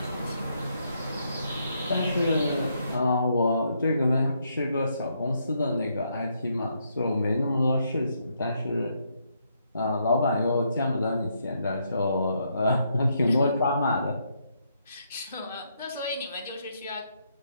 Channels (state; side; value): inverted; both; correlation -0.76